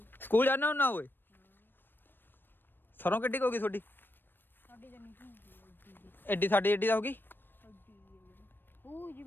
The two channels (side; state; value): right; late; 0.096 ms